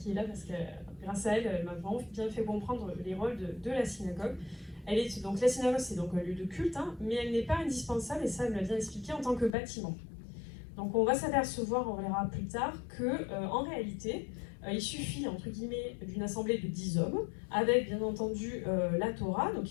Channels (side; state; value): right; drops out; at 9.6 s